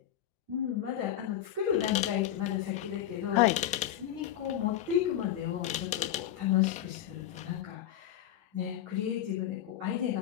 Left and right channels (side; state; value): right; quieter; 11.7 dB